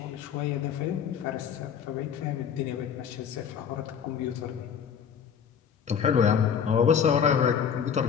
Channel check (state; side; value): quieter; right; 7.6 dB